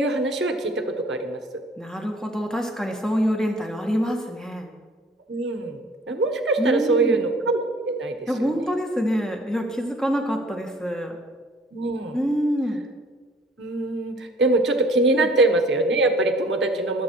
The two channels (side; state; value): both; normal; correlation 0.53